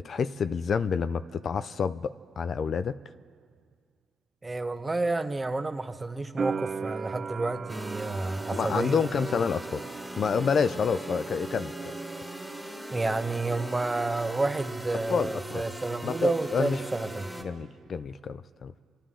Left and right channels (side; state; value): both; normal; correlation 0.85